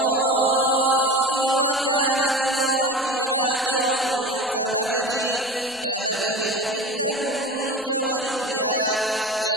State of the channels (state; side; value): normal; both; correlation 0.33